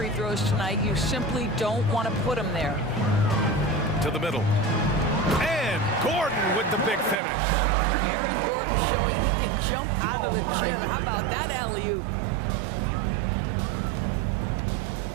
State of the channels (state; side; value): drops out; left; at 7.2 s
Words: throws tonight, you simply don't want to put him there. To the middle. And Gordon with the big finish. Aaron Gordon showing he can jump out of the gym. How about that alley-oop?